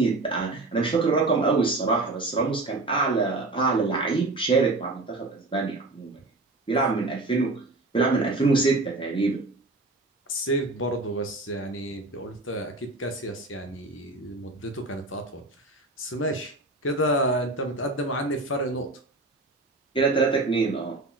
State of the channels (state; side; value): quieter; left; 3.0 dB